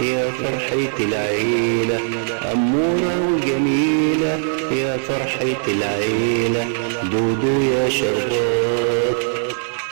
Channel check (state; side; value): silent; left; 66 dB below the other